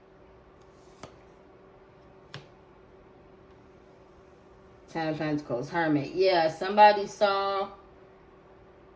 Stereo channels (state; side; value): identical; both; correlation 1.00